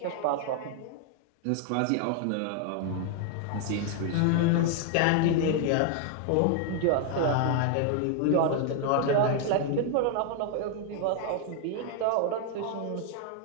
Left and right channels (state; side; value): different; both; correlation 0.00